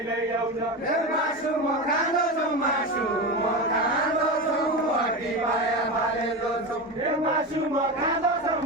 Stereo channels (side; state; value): both; normal; correlation 0.21